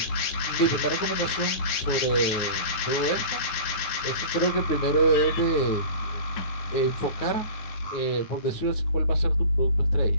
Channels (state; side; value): late; right; 9.5 ms